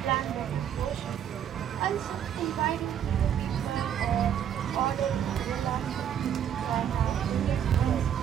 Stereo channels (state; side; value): quieter; left; 9.3 dB